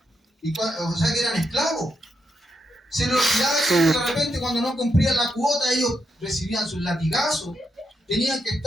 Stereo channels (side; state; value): both; normal; correlation 0.82